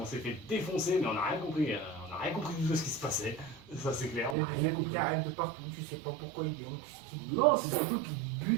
on s'est fait défoncer, mais on n'a rien compris. On n'a rien compris du tout de ce qui se passait. Ça, c'est clair. Il y On a n'a des rien ennemis compris. qui arrivent de partout, tu sais pas pourquoi ils viennent, qu'est-ce qu'ils te Non, c'est surtout qu'ils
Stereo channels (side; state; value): left; drops out; at 4.4 s